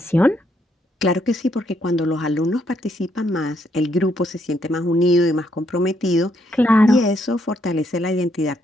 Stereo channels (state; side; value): normal; both; correlation 0.74